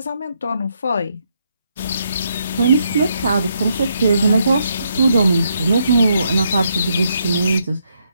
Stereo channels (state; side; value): inverted; both; correlation -0.77